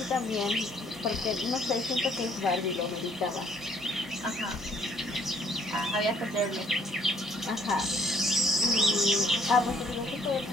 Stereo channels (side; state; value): both; normal; correlation 0.62